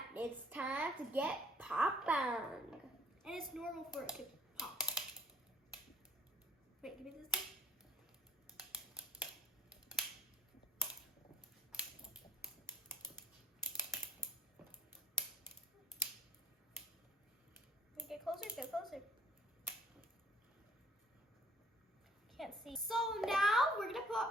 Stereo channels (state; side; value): normal; both; correlation 0.59